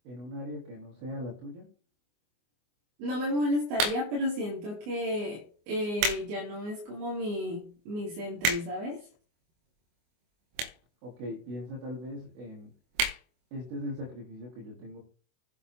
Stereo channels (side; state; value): left; late; 24 ms